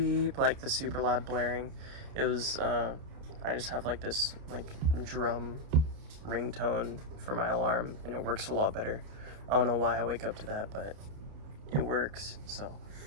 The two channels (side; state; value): left; late; 29 ms